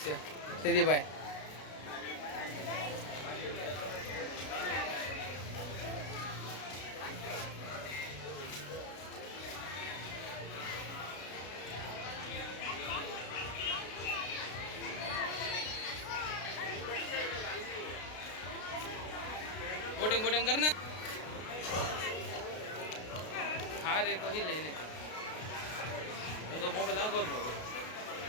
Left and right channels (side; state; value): right; late; 33 ms